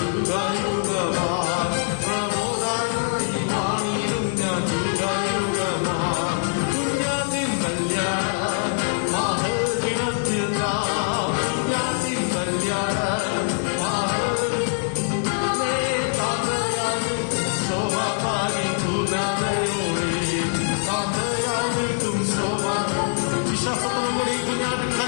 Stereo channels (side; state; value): right; silent; 63 dB below the other